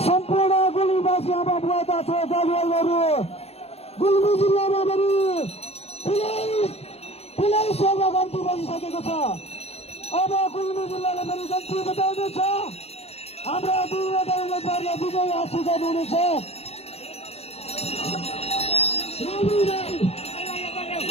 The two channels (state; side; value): late; right; 0.29 ms